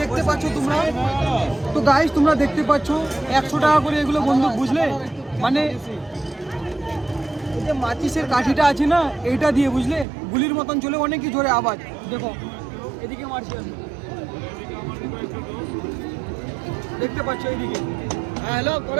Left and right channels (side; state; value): left; drops out; at 10.1 s